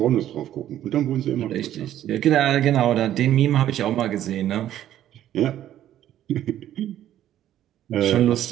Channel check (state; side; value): quieter; left; 12.0 dB